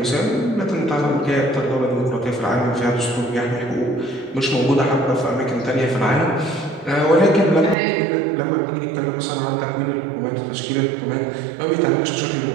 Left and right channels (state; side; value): drops out; left; at 7.8 s